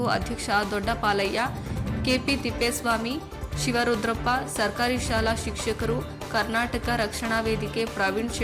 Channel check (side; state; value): both; identical; correlation 1.00